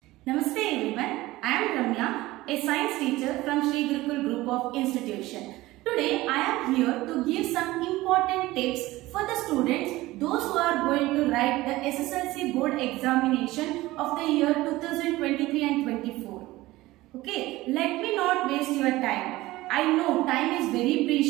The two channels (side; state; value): left; quieter; 18.3 dB